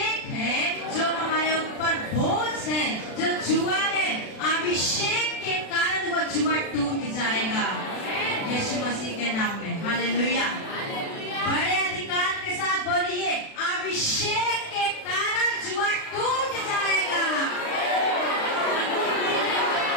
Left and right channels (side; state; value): right; late; 36 ms